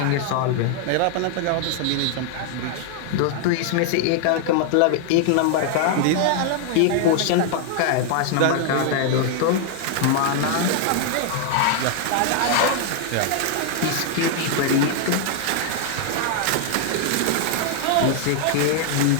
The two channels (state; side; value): different; both; correlation 0.00